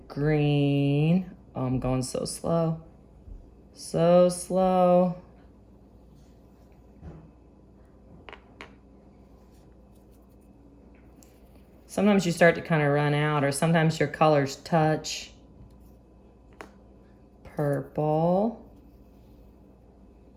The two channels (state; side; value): identical; both; correlation 1.00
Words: green. Oh, I'm going so slow. So slow. Sometimes you start to kind of run out, or sometimes your colors touch. Purple.